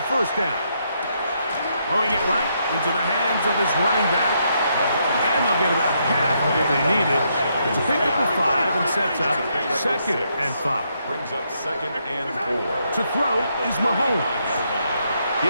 first down. Throwing it right into the hands of his running back. And they'll get about half of what they needed to pick up a 5 and sets up 2nd and 5. Brings up 2nd and 4. To throw is Mahomes.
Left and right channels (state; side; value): inverted; both; correlation -0.76